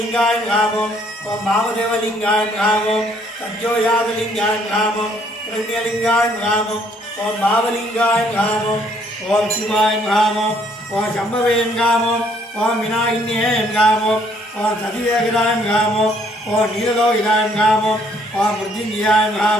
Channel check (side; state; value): both; normal; correlation 0.65